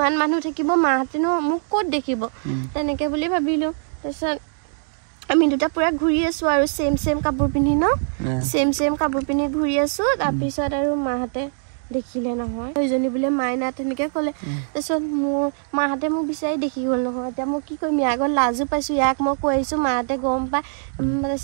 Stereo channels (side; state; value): left; silent; 64 dB below the other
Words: মানুহ থাকিব মাহঁতেনো মোক ক'ত দেখিব তেনেকে বুলি ভাবিলো তাৰপিছত আমি দুটা পুৰা ঘূৰি আছো আৰু সেম কাপোৰ পিন্ধি ন সেম কাপোৰ পিন্ধি ঘূৰি আছো তাৰপিছত আৰু মাহঁতে দেখিলে নহয় সেইজনী বোলে মাইনা তেনেকে ক'লে তাৰপিছত মোৰ মাহঁতে মোক বিচাৰি দেখি গ'ল নহয় এতিয়া মই কি কৰিম ইয়াৰ আগত লাজো পাইছো ইয়াক মই কৈ আহিছো মাহঁতে গম পাই